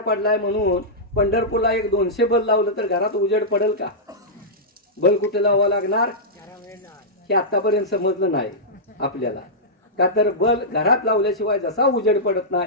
पडलाय म्हणून पंढरपूरला एक 200 बल्ब लावलं तर घरात उजेड पडेल का? बल्ब कुठे लावावं लागणार हे आतापर्यंत समजलं नाही आपल्याला. का तर बल्ब घरात लावल्याशिवाय जसा उजेड पडत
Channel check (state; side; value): normal; both; correlation -0.12